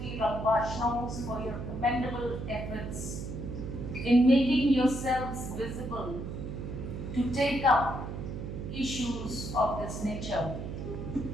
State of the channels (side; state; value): right; noise; hum, 6 dB below the sound